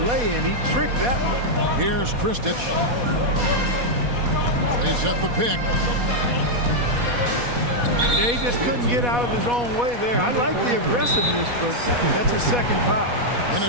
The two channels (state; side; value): late; left; 4.1 ms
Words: lay-in. He tricked that one. Here's Kristich. They set the pick. He just couldn't get out of his own way there. I like the aggressiveness, but that's his second foul.